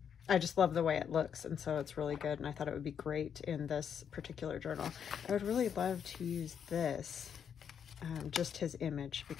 just love the way it looks, and so it's really good, and I thought it would be great in this particular journal. I would really love to use this, just his image,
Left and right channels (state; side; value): quieter; right; 7.9 dB